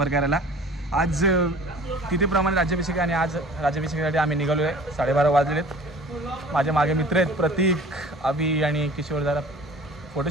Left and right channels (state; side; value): normal; both; correlation 0.45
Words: करायला. आज तिथेप्रमाणे राज्याभिषेक आणि आज राज्याभिषेकासाठी आम्ही निघालो आहे. 12:30 वाजलेत. माझ्या मागे मित्र आहेत प्रतीक, अभि आणि किशोर. जरा